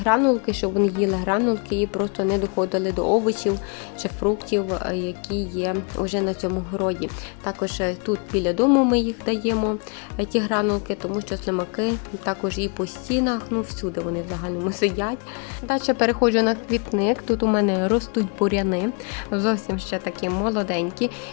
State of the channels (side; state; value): right; quieter; 36.4 dB